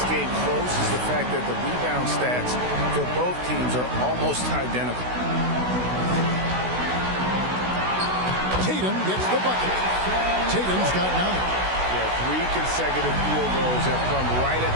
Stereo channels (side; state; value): left; late; 16 ms